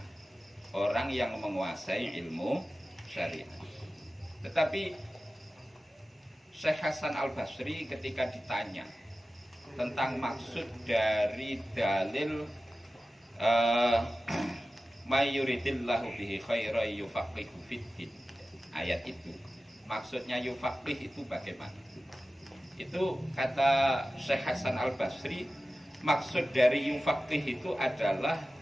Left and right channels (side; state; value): both; normal; correlation 0.95